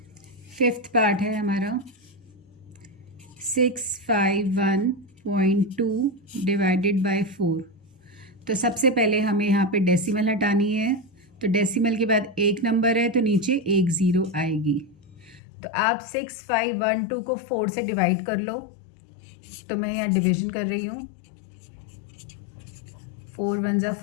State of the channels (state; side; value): drops out; right; at 15.4 s